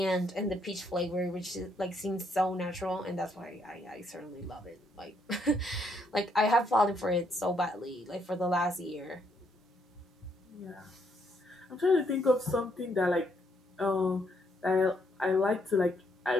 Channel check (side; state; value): both; normal; correlation 0.73